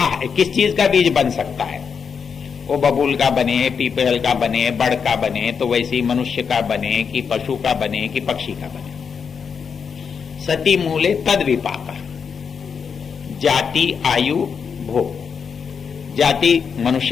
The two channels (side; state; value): right; quieter; 6.3 dB